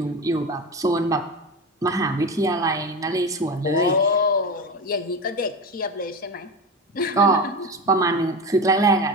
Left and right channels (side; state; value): both; normal; correlation 0.24